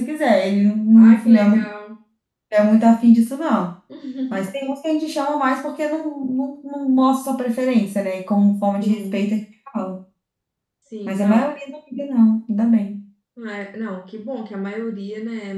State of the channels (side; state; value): both; identical; correlation 1.00